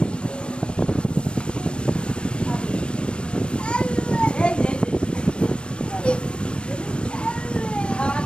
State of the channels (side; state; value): right; late; 0.057 ms